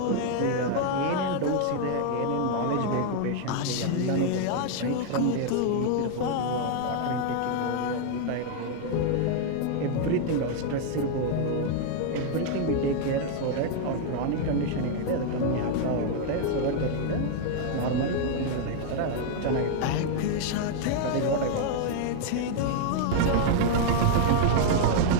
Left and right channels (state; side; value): different; both; correlation 0.00